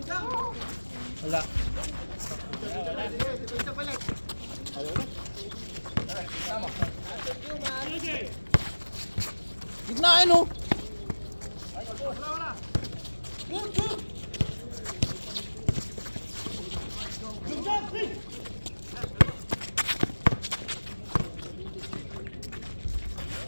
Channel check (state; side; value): inverted; both; correlation -1.00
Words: Wala. Gitnaan oh.